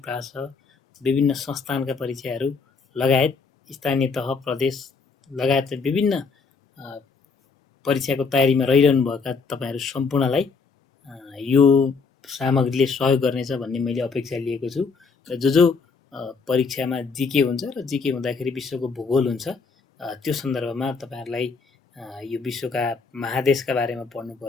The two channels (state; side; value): quieter; right; 4.9 dB